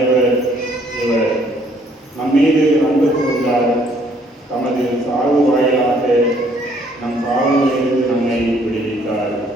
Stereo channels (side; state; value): both; normal; correlation 0.64